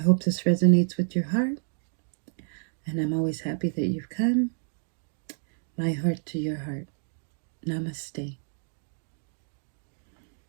this resonates with your heart, and I'm always happy that you've come. My heart to your heart. Namaste.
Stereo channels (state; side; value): silent; left; digital silence